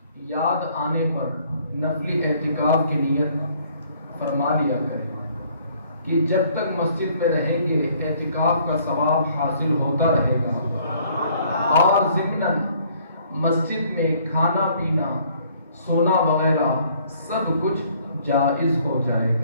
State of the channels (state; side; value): inverted; both; correlation -0.61